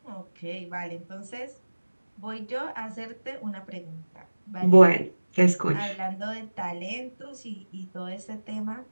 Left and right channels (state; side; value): inverted; both; correlation -1.00